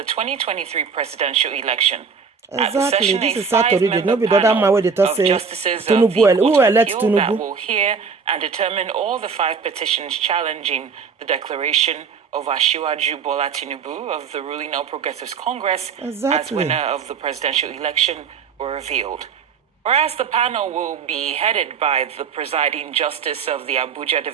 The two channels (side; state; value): left; quieter; 5.7 dB